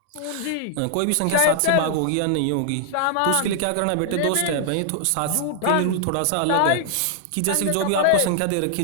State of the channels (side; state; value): both; different; correlation -0.01